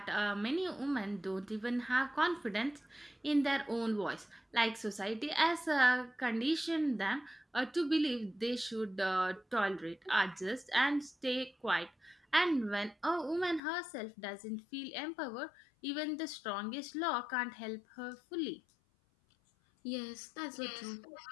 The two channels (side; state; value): right; drops out; at 13.6 s